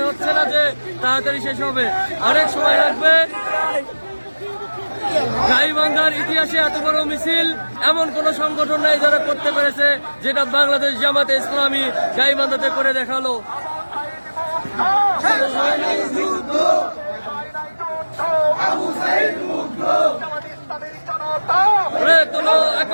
হচ্ছে না যে তাড়াতাড়ি শেষ হবে, অনেক সময় লাগবে। গাইবান্ধার ইতিহাসে এত বড় মিছিল এমন কোন সংগঠন নাই যারা করতে পেরেছে, যেটা বাংলাদেশ জামাতে ইসলামী গাইবান্ধাতে করে দেখালো। গড়ে তোলো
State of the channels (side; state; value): both; inverted; correlation -1.00